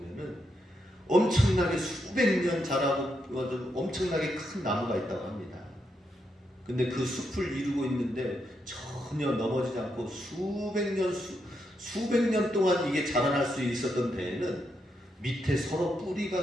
엄청나게 수백 년 자라고 엄청나게 큰 나무가 있다고 합니다. 근데 그 숲을 이루고 있는데 전혀 넘어지지 않고 수백 년 동안 이게 자라날 수 있었던 데에는 밑에 서로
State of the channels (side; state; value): both; normal; correlation 0.82